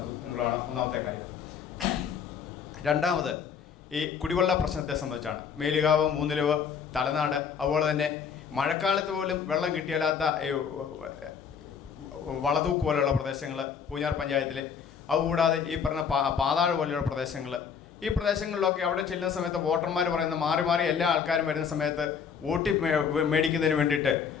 എന്നുള്ളതാണ് ഒന്നാമത്തെ കാര്യം. രണ്ടാമത് ഈ കുടിവെള്ള പ്രശ്നത്തെ സംബന്ധിച്ചാണ്. മേലുകാവ്, മൂന്നിലവ്, തലനാട്, അതുപോലെ തന്നെ മഴക്കാലത്ത് പോലും വെള്ളം കിട്ടിയാലാത്ത വളതൂക്ക് പോലെയുള്ള പ്രദേശങ്ങൾ പൂഞ്ഞാർ പഞ്ചായത്തിൽ, അതുകൂടാതെ ഈ പറഞ്ഞ പാതാഴ് പോലെയുള്ള പ്രദേശങ്ങൾ, ഈ പ്രദേശങ്ങളിലൊക്കെ അവിടെ ചെല്ലുന്ന സമയത്ത് വോട്ടർമാർ പറയുന്ന മാറി മാറി എല്ലാ ആൾക്കാരും വരുന്ന സമയത്ത് വോട്ട് മേടിക്കുന്നതിന് വേണ്ടിയിട്ട്,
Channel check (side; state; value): right; quieter; 6.9 dB